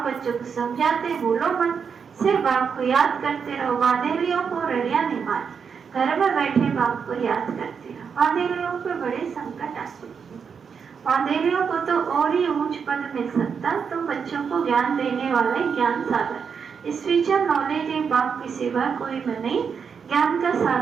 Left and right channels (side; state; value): left; quieter; 6.4 dB